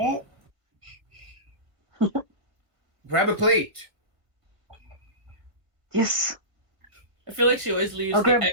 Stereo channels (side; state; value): left; late; 1.6 ms